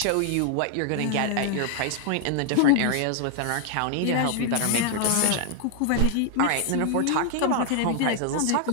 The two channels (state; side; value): different; both; correlation 0.00